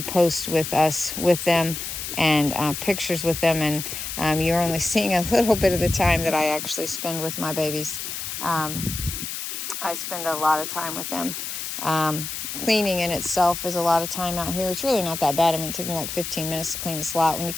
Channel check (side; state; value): left; noise; hiss, 6 dB below the sound